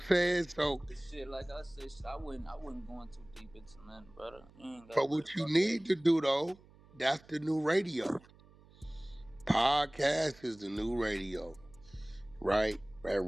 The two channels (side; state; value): right; noise; hum, 25 dB below the sound